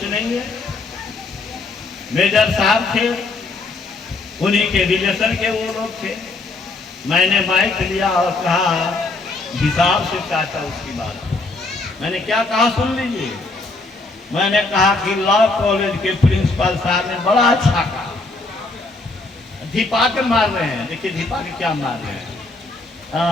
नहीं है। मेजर साहब थे, उन्हीं के रिलेशन के वो लोग थे। मैंने माइक लिया और कहा, हिसाब से काटा उसकी बात। मैंने क्या कहा सुन लीजिए। मैंने कहा कि लॉ कॉलेज के प्रिंसिपल साहब ने बड़ा अच्छा कहा, धिपा के मार रहे हैं। देखिए धिपा के क्या मार रहे हैं।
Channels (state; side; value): quieter; right; 3.4 dB